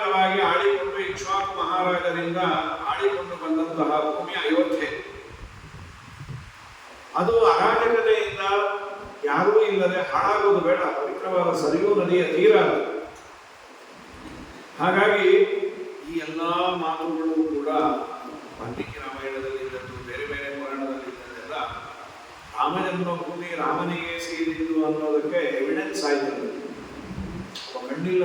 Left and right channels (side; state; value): both; identical; correlation 1.00